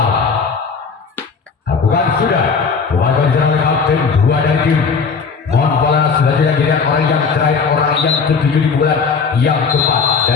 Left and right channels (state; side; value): quieter; right; 5.3 dB